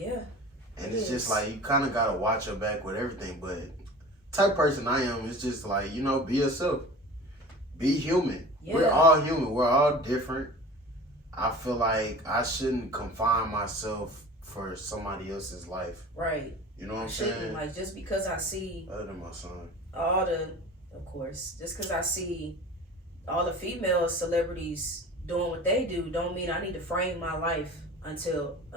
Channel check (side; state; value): both; normal; correlation 0.39